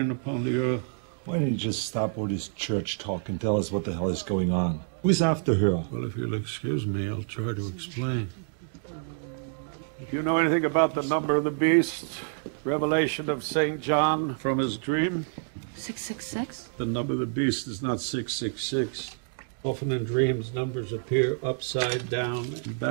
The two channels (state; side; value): silent; left; digital silence